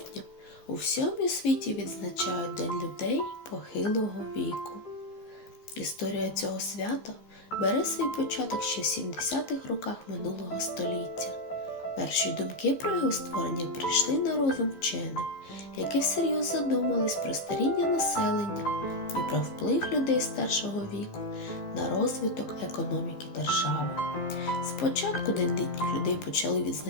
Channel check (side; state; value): right; late; 15 ms